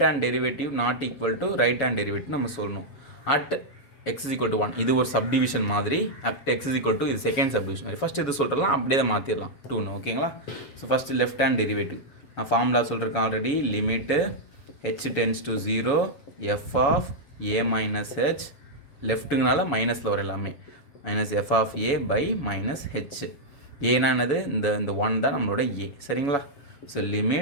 hand derivative not equal to right hand derivative நம்ம சொல்லணும். At x is equal to 1, இது ஒரு சப்டிவிஷன் மாதிரி. At x is equal to, இது செகண்ட் சப்டிவிஷன் மாதிரி. ஃபஸ்ட்டு இது சொல்கிறலாம், அப்படியே தான் மாற்றிடலாம் 2ன்னு. ஓகேங்களா? So first left hand derivative நான் ஃபார்முலா சொல்லியிருக்கேன் already. Limit h tends to 0 f of a minus h, லெஃப்ட்டுங்கனால மைனஸில் வர எல்லாமே, minus f of a by minus h. ஏன்னா என்னது, இந்த 1 தான் நம்மளோட ஏ. சரிங்களா? So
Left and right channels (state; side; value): late; right; 7.1 ms